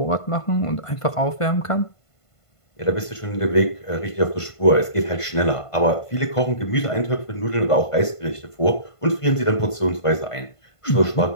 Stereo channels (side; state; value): right; late; 1.5 ms